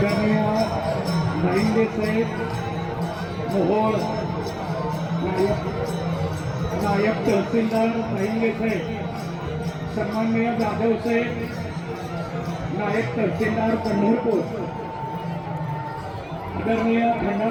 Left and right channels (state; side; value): identical; both; correlation 1.00